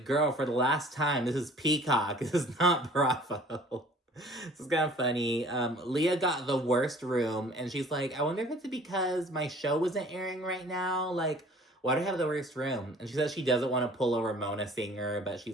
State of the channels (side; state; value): both; normal; correlation 0.51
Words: girl, for the last time, this is Peacock. This is not Bravo. This is kind of funny. Leah got the worst room, and she's I wonder if it's because my show isn't airing right now. Why do I have the worst room? And she says she doesn't want to pull a Ramona singer, but